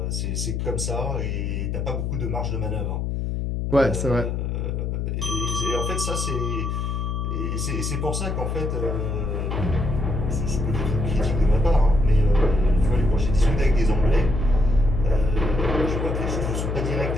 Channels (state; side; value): noise; left; hum, 1 dB below the sound